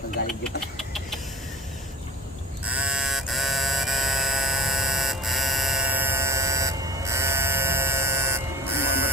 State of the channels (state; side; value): normal; both; correlation 0.38